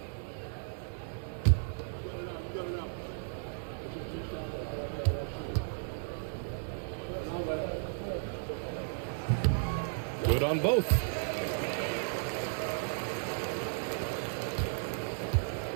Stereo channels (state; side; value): silent; left; digital silence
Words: Good on both.